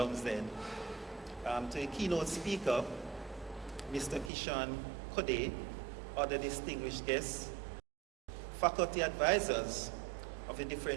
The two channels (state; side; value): drops out; left; at 4.3 s